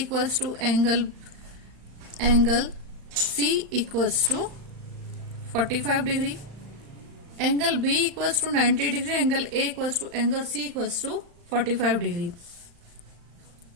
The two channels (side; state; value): left; late; 35 ms